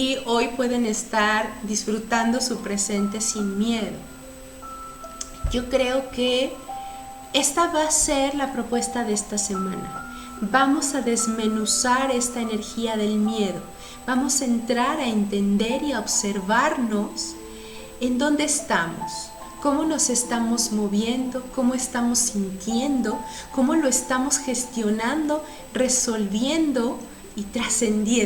hoy pueden estar disfrutando su presente sin miedo. Yo creo que esta va a ser la propuesta de esta semana. Vamos a desmenuzar esta energía del miedo. Vamos a entrar a entender y a observarnos en dónde estamos, cómo nos estamos moviendo, cómo estamos sintiendo, cómo lo estamos gestionando, resolviendo y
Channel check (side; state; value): both; identical; correlation 1.00